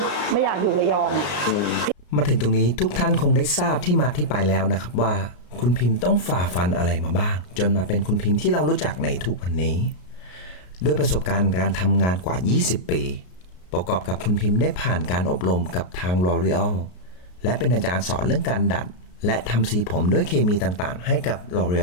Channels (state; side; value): late; right; 33 ms